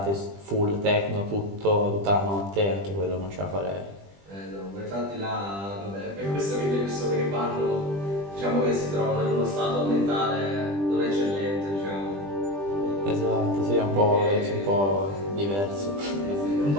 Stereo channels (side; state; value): left; late; 20 ms